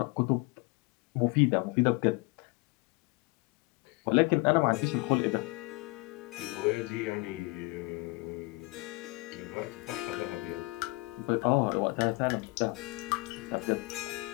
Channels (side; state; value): right; quieter; 25.5 dB